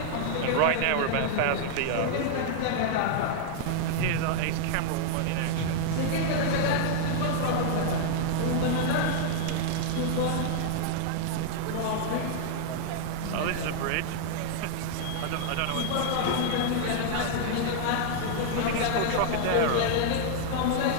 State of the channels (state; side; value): different; both; correlation -0.01